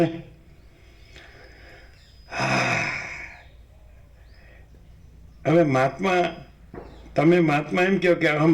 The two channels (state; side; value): identical; both; correlation 1.00